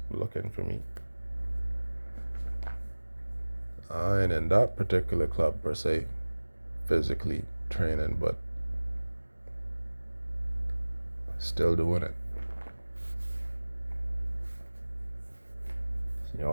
looking for me, I ain't in that particular club per se, physically training, but still doing it.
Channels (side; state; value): both; inverted; correlation -1.00